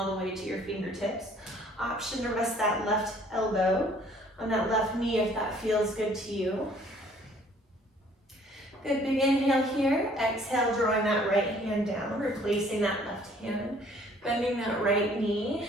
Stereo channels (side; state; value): both; normal; correlation 0.58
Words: the way to your fingertips. Option to rest that left elbow on that left knee if that feels good to you. Good, big inhale here. Exhale, drawing that right hand down, replacing that left hand. Bending that right knee.